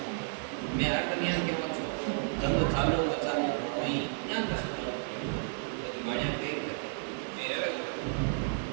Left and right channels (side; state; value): left; silent; digital silence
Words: मैं हर कन्या के पास धंधो चालू बचालो वहीं यहाँ कर सकते हो बढ़िया पे मेरे